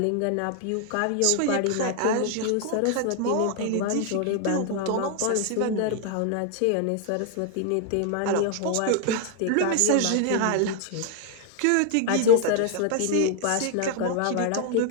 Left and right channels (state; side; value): different; both; correlation 0.00